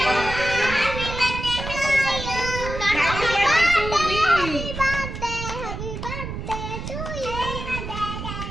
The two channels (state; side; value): noise; right; rumble, 7 dB below the sound